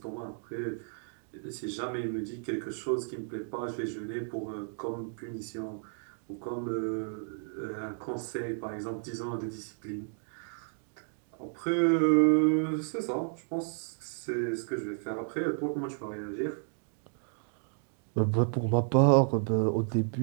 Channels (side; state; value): left; silent; 56 dB below the other